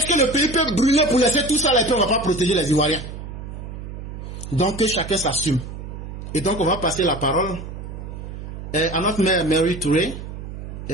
que le pays peut brûler pour laisser tout ça là et puis on ne va pas protéger les Ivoiriens? Donc que chacun s'assume. Et donc on va passer la parole à notre mère Mary Touré.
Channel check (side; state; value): right; noise; hum, 10 dB below the sound